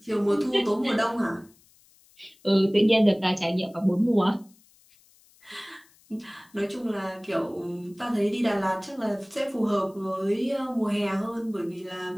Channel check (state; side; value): noise; left; hiss, 30 dB below the sound